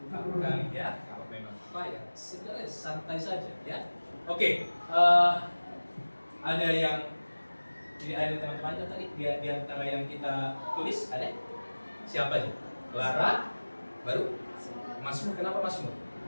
kamu kali ya. Kalau memang apa ya, sebenarnya santai saja ya. Oke. Ada yang jadi ada teman-temannya tadi di antara yang kita tulis ada siapa aja? Clara, baru Masmur. Kenapa Masmur?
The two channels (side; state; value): both; inverted; correlation -1.00